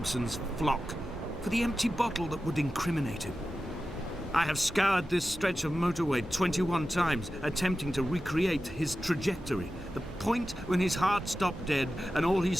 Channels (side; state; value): both; normal; correlation 0.93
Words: flock, for the empty bottle that would incriminate him. I have scoured this stretch of motorway 21 times, attempting to recreate his trajectory, the point when his heart stopped dead and all he